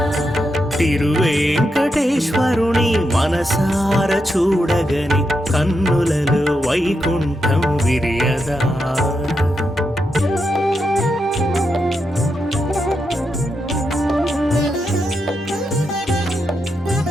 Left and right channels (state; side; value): normal; both; correlation 0.84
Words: తిరువేంకటేశ్వరుని మనసార చూడగని కన్నులలో వైకుంఠం విరియదా.